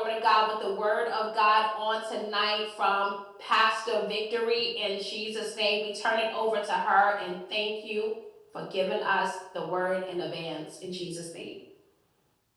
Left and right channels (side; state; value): both; identical; correlation 1.00